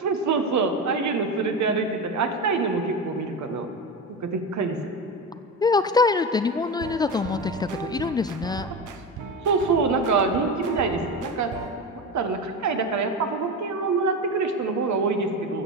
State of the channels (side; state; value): both; normal; correlation 0.21